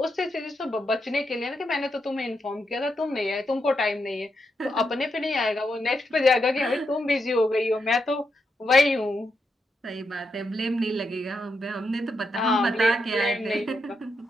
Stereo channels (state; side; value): normal; both; correlation 0.83